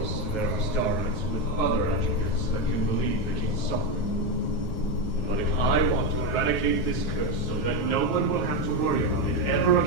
there are starlights with other attributes that can relieve the king's suffering. But if I want to eradicate this curse so that no one will have to worry about it ever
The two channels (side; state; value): right; late; 9.4 ms